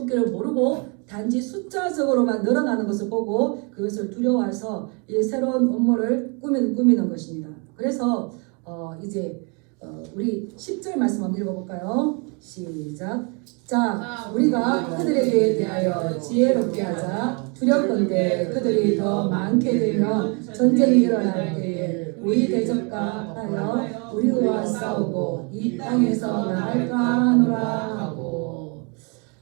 모르고 단지 숫자적으로만 늘어나는 것을 보고 그것을 두려워해서 이 새로운 업무를 꾸미는 것입니다. 그래서 이제 우리 10절 말씀 한번 읽어볼까요? 시작. 자, 우리가 그들에게 대하여 지혜롭게 하자. 두렵건대 그들이 더 많게 되면 전쟁이 일어날 때에 우리 대적과 하여 우리와 싸우고 이 땅에서 나갈까 하노라 하고.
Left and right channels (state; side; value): quieter; left; 34.0 dB